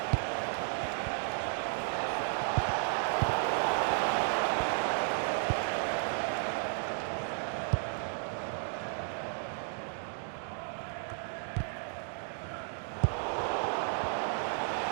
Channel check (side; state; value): left; silent; 55 dB below the other